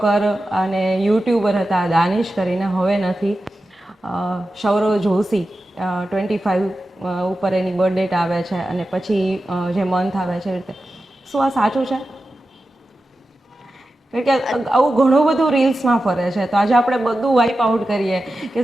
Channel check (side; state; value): both; normal; correlation 0.92